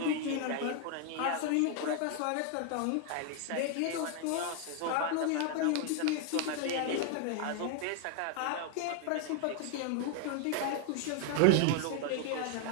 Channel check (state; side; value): different; both; correlation 0.00